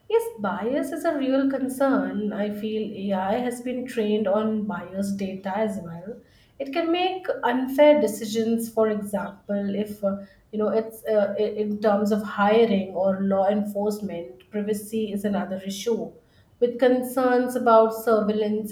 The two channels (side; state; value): both; identical; correlation 1.00